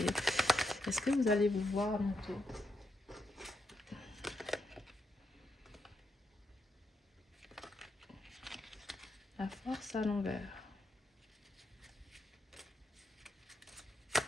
que vous allez vous voir bientôt? La force à l'envers.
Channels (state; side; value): normal; both; correlation 0.80